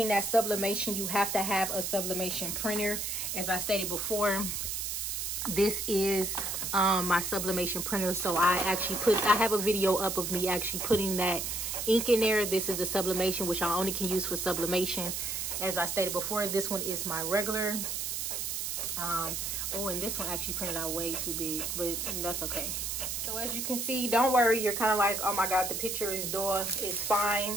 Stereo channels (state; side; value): noise; right; hiss, 2 dB below the sound